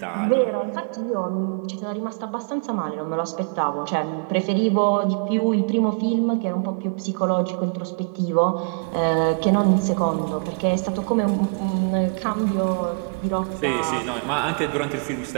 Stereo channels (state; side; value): quieter; left; 38.4 dB